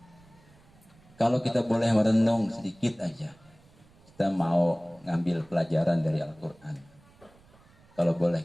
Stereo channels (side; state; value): right; noise; rumble, 28 dB below the sound